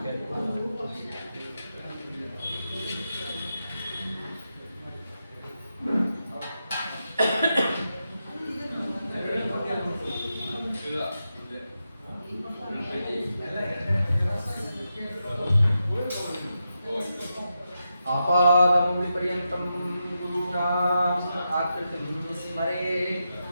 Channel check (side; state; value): both; inverted; correlation -0.87